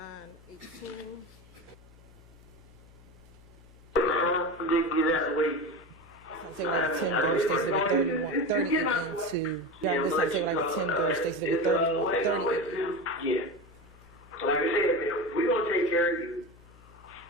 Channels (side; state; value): left; noise; hum, 24 dB below the sound